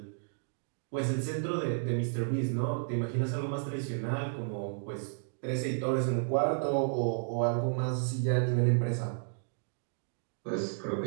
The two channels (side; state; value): left; silent; digital silence